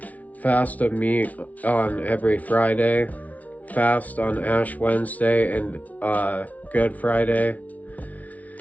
Fast of meat on every Friday. Fast on Ash Wednesday and Good Friday.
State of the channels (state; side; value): late; right; 0.071 ms